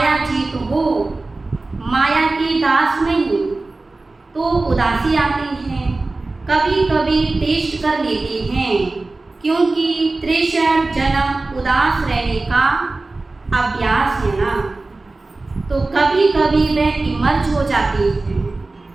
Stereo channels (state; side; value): quieter; left; 3.3 dB